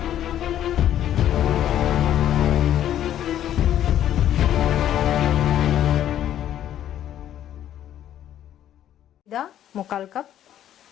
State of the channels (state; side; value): quieter; right; 11.3 dB